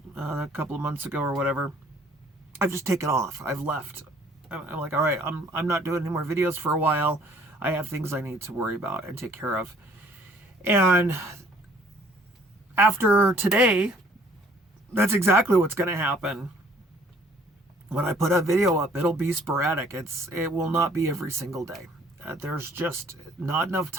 a couple of months ago or whatever, I've just taken off. I've left. I'm like, all right, I'm not doing any more videos for a while. I have things I need to worry about and take care of. And after today, that's exactly what's going to happen. When I put a video up, it'll be sporadic. It will not be every single day. There's just not enough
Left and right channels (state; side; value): normal; both; correlation 0.58